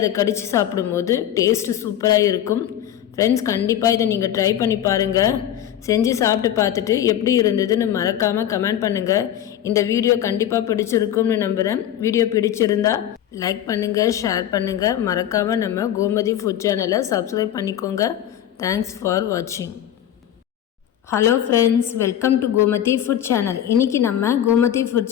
கடித்து சாப்பிடும்போது டேஸ்ட்டு சூப்பராக இருக்கும். ஃப்ரெண்ட்ஸ், கண்டிப்பாக இதை நீங்கள் ட்ரை பண்ணி பாருங்கள். செஞ்சு சாப்பிட்டு பார்த்துட்டு எப்படி இருந்ததுன்னு மறக்காமல் கமெண்ட் பண்ணுங்கள். இந்த வீடியோ கண்டிப்பாக பிடிச்சிருக்கும்னு நம்புகிறேன். வீடியோ பிடிச்சிருந்தா லைக் பண்ணுங்கள், ஷேர் பண்ணுங்கள். மறக்காமல் நம்ம கோமதி ஃபுட் சேனலை சப்ஸ்கிரைப் பண்ணிக்கோங்க. தேங்க்ஸ் ஃபார் வாட்சிங். Hello friends, welcome to Gomathi food channel. இன்றைக்கி நம்ம கோமதி ஃபுட்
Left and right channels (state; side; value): quieter; right; 11.0 dB